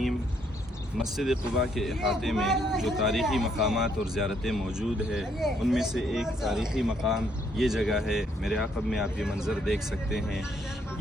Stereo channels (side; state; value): both; normal; correlation 0.70